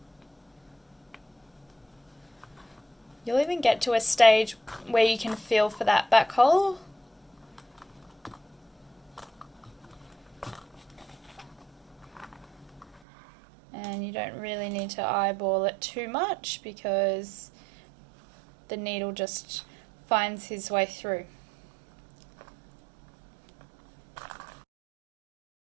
You'll even get to a stage where you can feel for that back hole. And you don't really need to eyeball it too much because the needle just finds his way through.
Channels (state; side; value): drops out; left; at 13.0 s